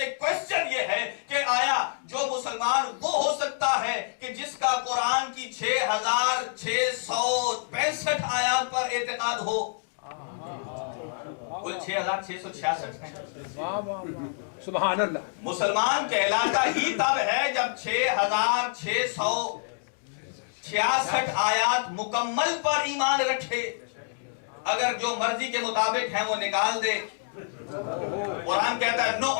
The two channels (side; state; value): right; silent; digital silence